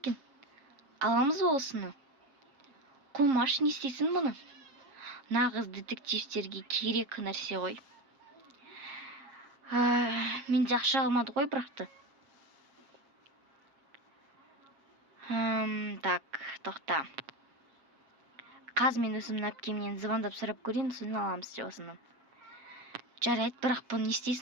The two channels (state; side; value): late; left; 7.4 ms